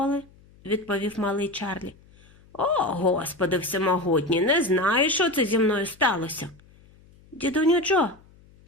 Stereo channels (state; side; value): noise; left; hum, 27 dB below the sound